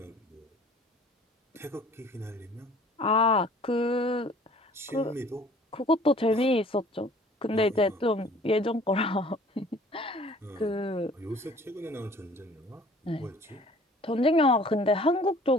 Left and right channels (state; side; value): normal; both; correlation 0.52